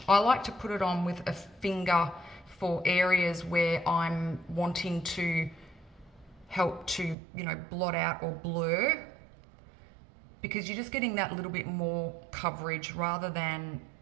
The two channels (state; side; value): drops out; left; at 7.2 s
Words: I like to put it on with a finger for areas where I'm wanting to help to, you know, blot out or blur, because you're just getting that little bit more coverage rather than